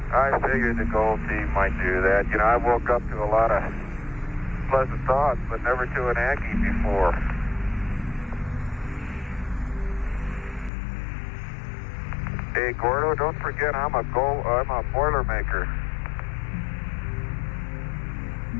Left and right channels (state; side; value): drops out; right; at 10.7 s